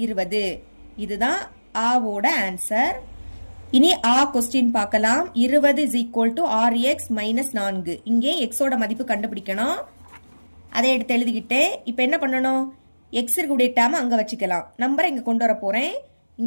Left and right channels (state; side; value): inverted; both; correlation -1.00